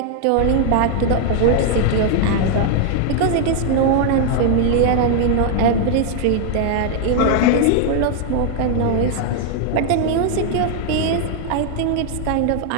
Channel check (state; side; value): different; both; correlation 0.00